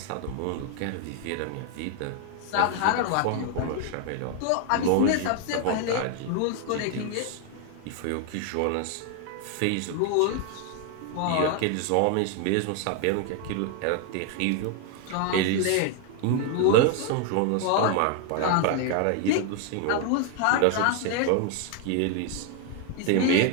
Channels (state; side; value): different; both; correlation 0.00